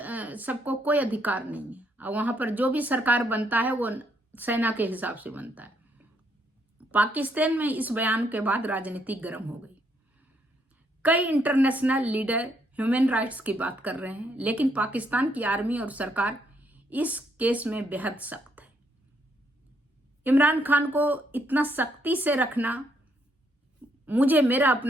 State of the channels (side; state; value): both; normal; correlation 0.73